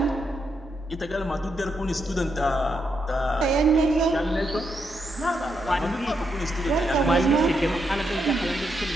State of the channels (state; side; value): normal; both; correlation 0.80